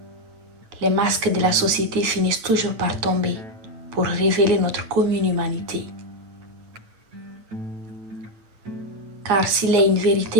les masques de la société finissent toujours par tomber pour révéler notre commune humanité. Car s'il y a une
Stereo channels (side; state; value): left; late; 9.2 ms